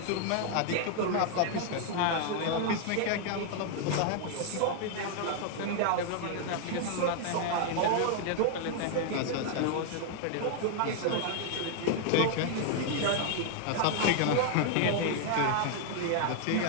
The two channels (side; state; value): both; different; correlation 0.00